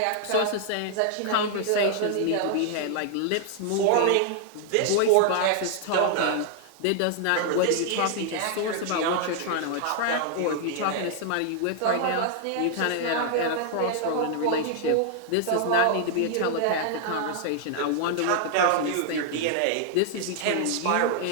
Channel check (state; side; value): different; both; correlation -0.01